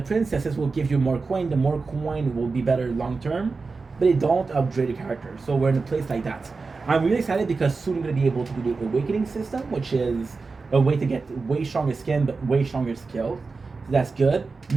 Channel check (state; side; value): quieter; left; 4.2 dB